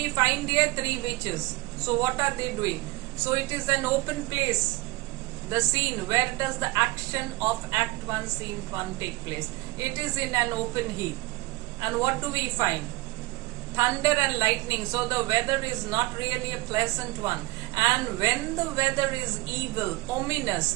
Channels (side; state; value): left; quieter; 20.4 dB